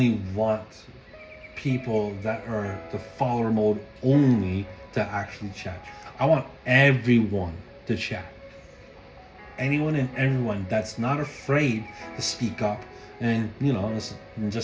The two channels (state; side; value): identical; both; correlation 1.00